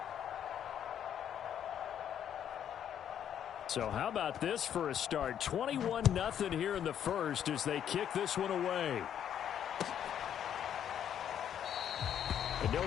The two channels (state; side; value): quieter; right; 9.5 dB